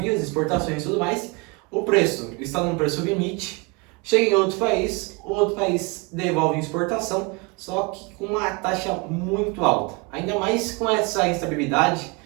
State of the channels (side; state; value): left; quieter; 28.3 dB